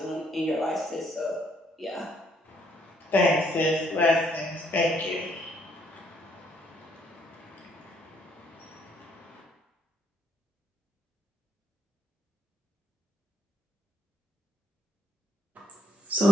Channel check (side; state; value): both; normal; correlation 0.68